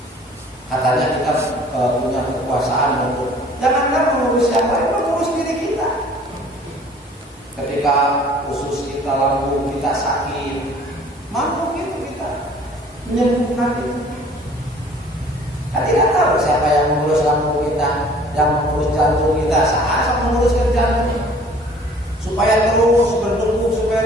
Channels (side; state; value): both; normal; correlation 0.52